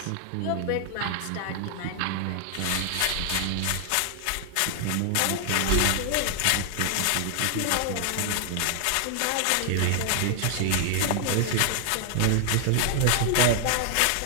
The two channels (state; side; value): different; both; correlation 0.00